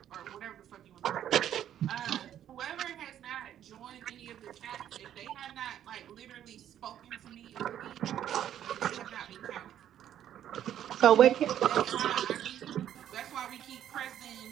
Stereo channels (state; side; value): quieter; left; 10.8 dB